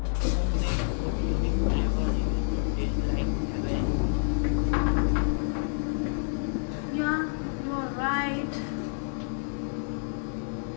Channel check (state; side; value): silent; right; digital silence